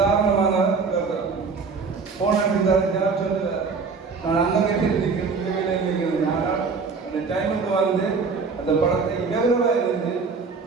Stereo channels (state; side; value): quieter; left; 4.8 dB